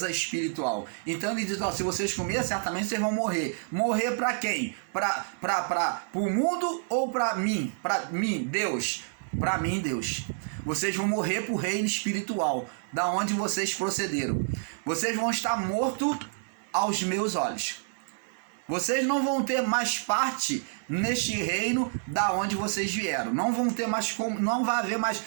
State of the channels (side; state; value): left; silent; 59 dB below the other